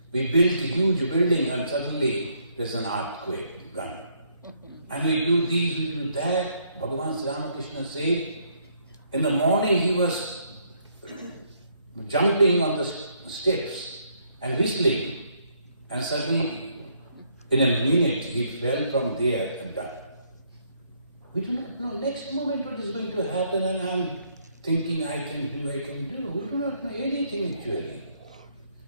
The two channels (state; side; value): inverted; both; correlation -0.70